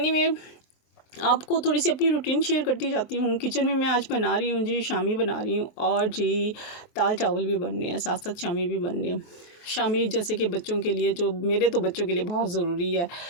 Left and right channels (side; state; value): right; late; 23 ms